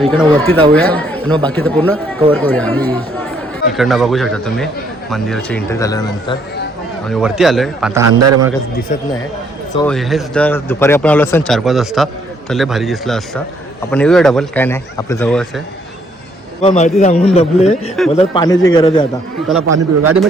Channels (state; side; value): normal; both; correlation 0.67